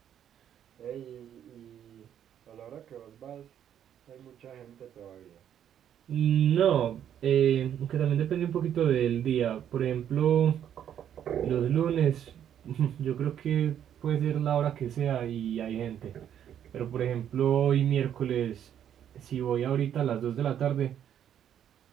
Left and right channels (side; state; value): left; quieter; 9.8 dB